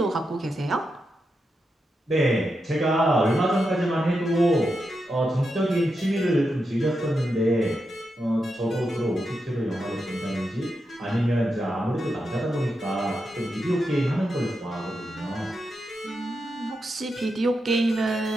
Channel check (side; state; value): both; normal; correlation 0.86